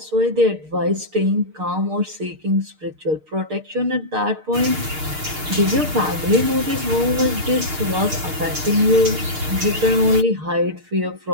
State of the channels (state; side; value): late; left; 6.5 ms